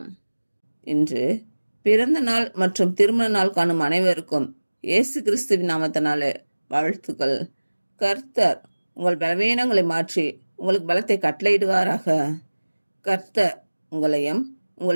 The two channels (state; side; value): inverted; both; correlation -1.00